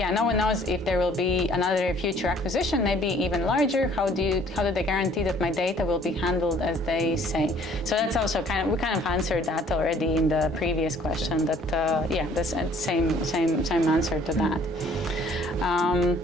one knows if there will be another future acquisition, maybe even larger. How do they guarantee that my data will be handled as they say? So that's also we kind of answered that already in the previous question. That the same answer to that.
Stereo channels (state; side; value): normal; both; correlation 0.57